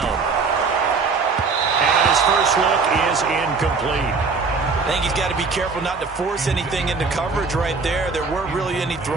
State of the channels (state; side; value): quieter; left; 4.5 dB